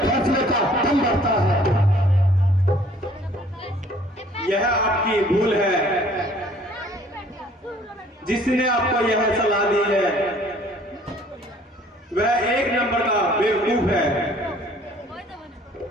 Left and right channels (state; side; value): normal; both; correlation 0.56